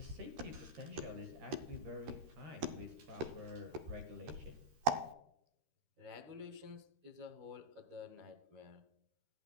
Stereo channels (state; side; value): late; left; 13 ms